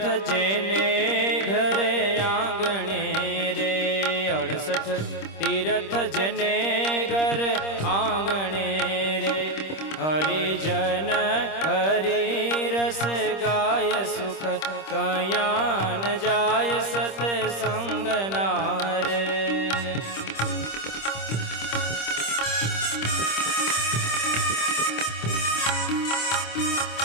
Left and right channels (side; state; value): right; late; 26 ms